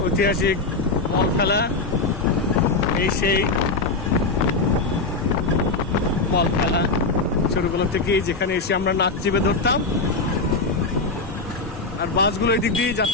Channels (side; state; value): right; quieter; 3.7 dB